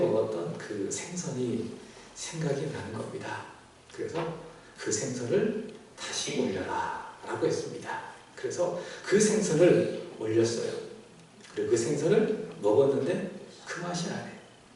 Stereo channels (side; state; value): both; identical; correlation 1.00